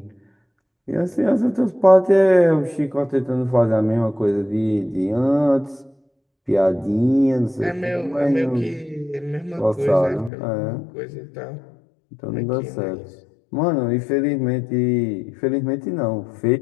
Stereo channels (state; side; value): drops out; right; at 10.3 s